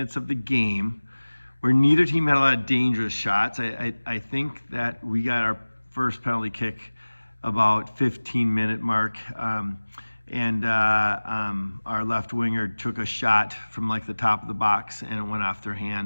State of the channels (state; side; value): inverted; both; correlation -1.00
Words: of the game, where neither team had a lot of dangerous shots, I think that we got our first penalty kick about 15-minute mark. And our left winger took a shot from like the top of the box and it went off their